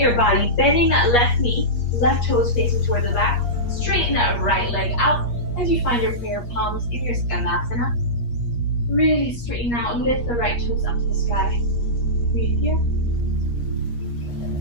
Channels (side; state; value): right; late; 8.4 ms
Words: your body, bending that left knee, left toes facing towards the back. Straighten that right leg out as you find your prayer palms in your Skandasana. Really straighten out, lift the right toes up to the sky. Breathe here.